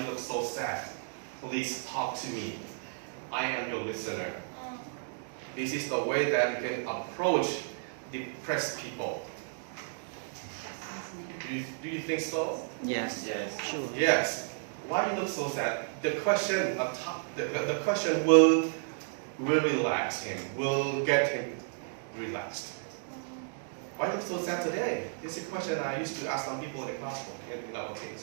you look so sad? Please talk to me. I am your listener. This is the way that you can approach depressed people. Do you think so? Yes. Yes. Sure. Yes. Why you look so sad? The question will relax him, will get him relaxed. Why you look so sad today? This is a question I used to ask some people in the classroom in our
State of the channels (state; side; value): silent; left; digital silence